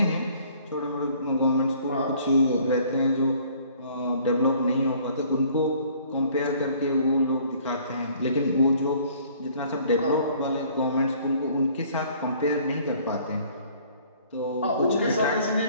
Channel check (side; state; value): both; inverted; correlation -0.57